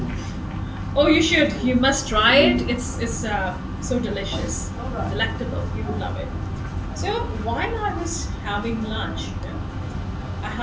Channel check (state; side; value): identical; both; correlation 1.00